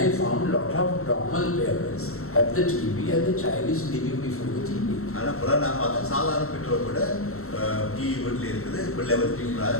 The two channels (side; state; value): right; late; 0.63 ms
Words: found a lot of normal parents have the TV and the child is living before the TV.